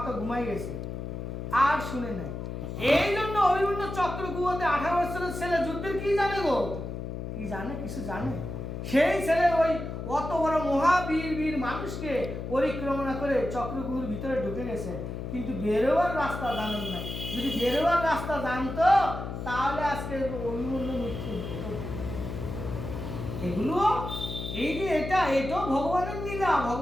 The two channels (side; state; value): left; noise; hum, 6 dB below the sound